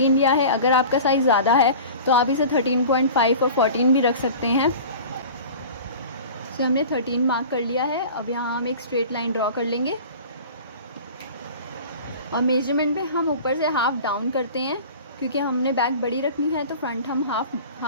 लिया है। अगर आपका साइज़ ज़्यादा है तो आप इसे 13.5 और 14 भी रख सकते हैं। इसे हमने 13 मार्क कर लिया है। अब यहाँ हम एक स्ट्रेट लाइन ड्रॉ कर लेंगे और मेजरमेंट पे हम ऊपर से हाफ डाउन करते हैं क्योंकि हमने बैक बड़ी रखनी है। तो फ्रंट हम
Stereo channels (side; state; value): both; inverted; correlation -0.39